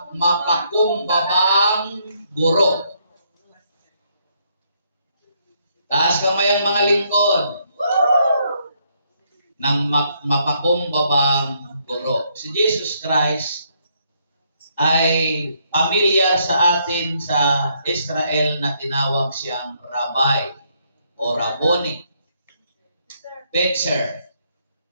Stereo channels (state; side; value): inverted; both; correlation -0.72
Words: mapakumbabang guro. Taas kamay ang mga lingkod ng mapakumbabang guro. Si Jesus Christ ay pamilyar sa atin sa Israel na tinawag siyang Rabbi o Rabboni, teacher